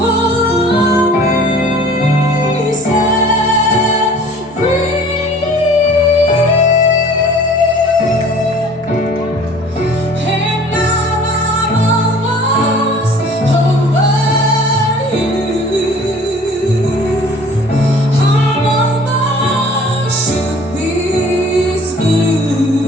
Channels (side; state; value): both; normal; correlation 0.49